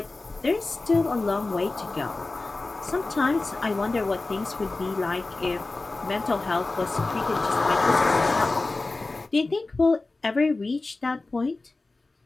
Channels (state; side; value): quieter; right; 3.3 dB